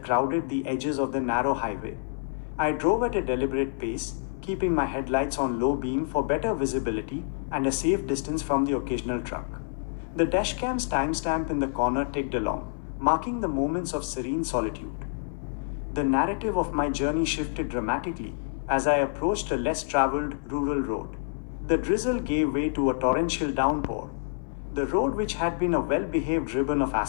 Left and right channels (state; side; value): silent; right; digital silence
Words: crowded the edges of the narrow highway. I drove at a deliberate pace, keeping my headlights on low beam for better visibility and a safe distance from the occasional truck. The dashcam's timestamp in the corner ticked along, marking the moments of serene solitude. The narrative of my journey shifted dramatically as I approached a less traveled rural road. The drizzle gave way to a torrential downpour. The road, which had been a well-behaved ribbon of